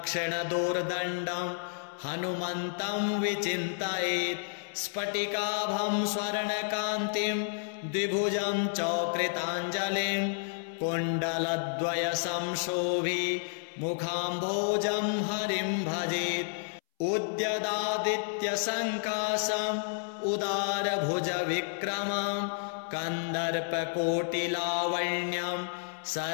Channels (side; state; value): right; silent; 57 dB below the other